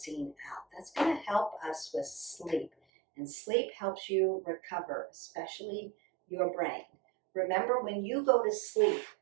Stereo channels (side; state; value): left; drops out; at 2.7 s